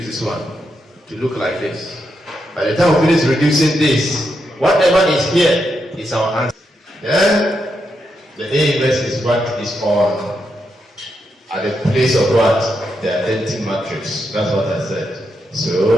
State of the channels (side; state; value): both; normal; correlation 0.83